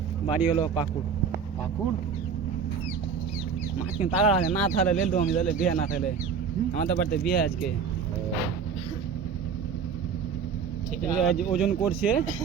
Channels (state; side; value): quieter; left; 6.5 dB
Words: বাড়ি হলো পাকুড় মাছ কিন্তু তারা আছে না থাকলে লেল আমি তাহলে বিয়ে না থাকলে আমাদের বাড়িতে বিয়ে আজকে ওজন করছে